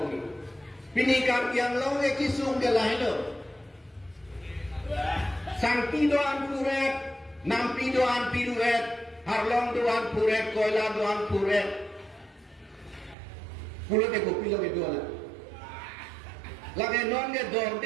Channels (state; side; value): drops out; left; at 13.2 s